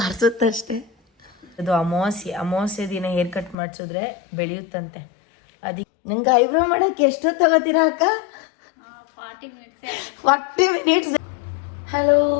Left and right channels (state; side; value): drops out; right; at 3.6 s